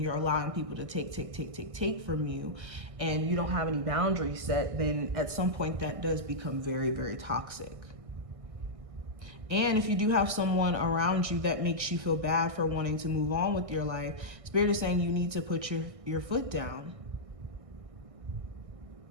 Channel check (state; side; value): late; left; 1.6 ms